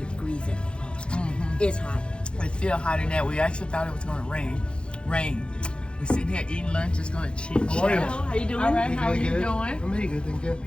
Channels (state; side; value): late; right; 0.055 ms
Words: degrees at the most. It's hot. It's still hotter than that. We actually thought it was going to rain. We're sitting here eating lunch. It's going to chit chat. How you doing? All right, how are you good. doing? I'm really good, thank you.